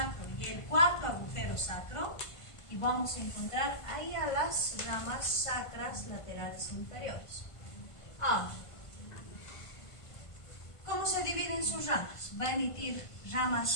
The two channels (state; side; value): late; right; 1.5 ms